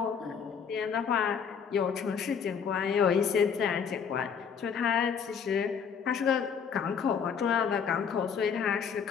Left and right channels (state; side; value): quieter; right; 6.8 dB